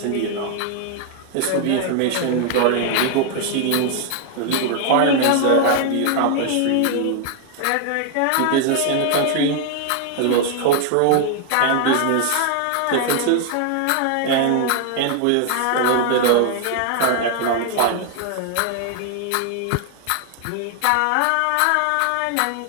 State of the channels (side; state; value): both; different; correlation 0.00